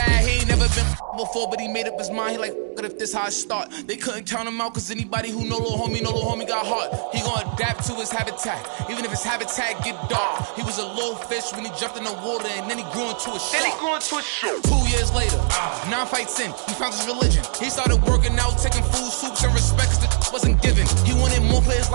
He ain't never been before, but he made up his mind. He like, what if this how I start? They couldn't count him out, cause anybody who know little homie got heart. He gonna adapt to his habitat, even if his habitat get dark. He was a little fish when he jumped in the water, and then he grew into a shark. 2 years later, 9 fights in, he found his religion. He started working out, taking food, soups, and respect, cause the wasn't given. He wanted more for his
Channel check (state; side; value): silent; left; digital silence